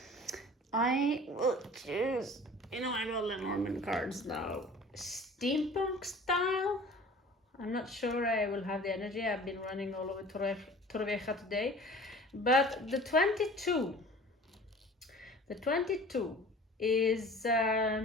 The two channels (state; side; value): normal; both; correlation 0.44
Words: I will choose, I got the Norman cards now. Steampunk style. I'm not sure I will have the energy. I've been running all over Torrevieja today. But the 22 is,